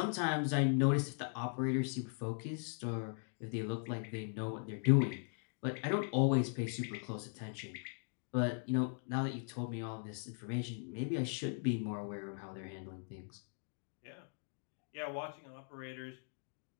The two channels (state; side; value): silent; right; 52 dB below the other